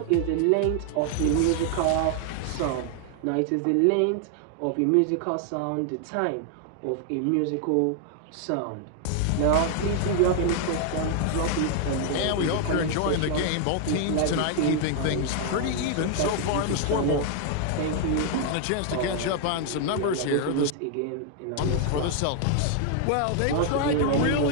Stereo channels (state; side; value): different; both; correlation 0.00